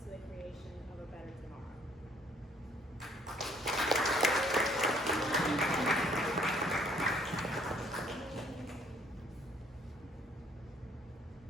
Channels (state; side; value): normal; both; correlation 0.62